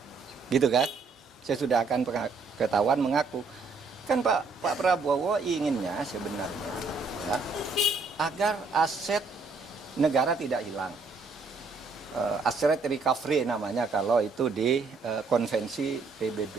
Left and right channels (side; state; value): left; quieter; 4.2 dB